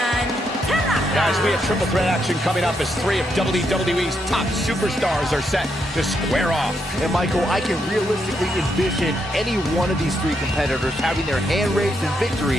Tanaka. Guys, we have triple threat action coming up as three of WWE's top superstars are set to square off. And Michael, I can realistically envision any one of these three competitors having their hand raised in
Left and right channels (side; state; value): both; normal; correlation 0.79